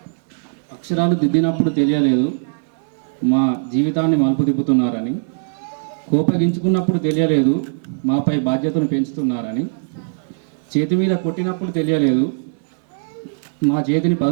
అక్షరాలు దిద్దినప్పుడు తెలియలేదు మా జీవితాన్ని మలుపు తిప్పుతున్నారని, కోపగించుకున్నప్పుడు తెలియలేదు మాపై బాధ్యతను పెంచుతున్నారని, చేతి మీద కొట్టినప్పుడు తెలియలేదు మా చేతిని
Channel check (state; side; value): silent; left; digital silence